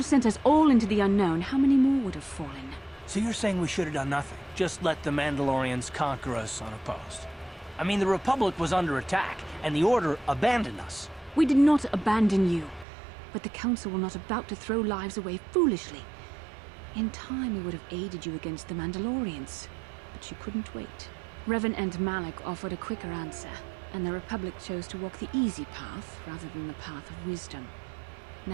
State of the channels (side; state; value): left; drops out; at 12.9 s